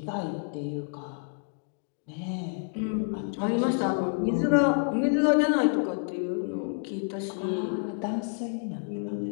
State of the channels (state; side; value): silent; right; 57 dB below the other